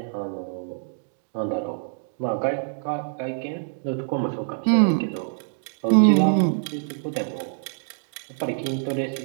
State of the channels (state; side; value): silent; left; digital silence